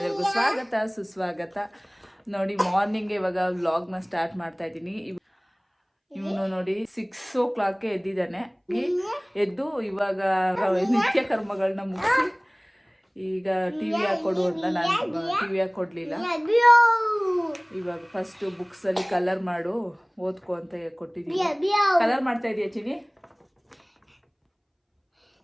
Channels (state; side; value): identical; both; correlation 1.00